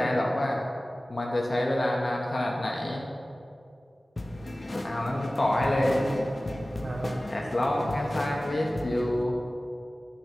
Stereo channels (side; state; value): both; normal; correlation 0.97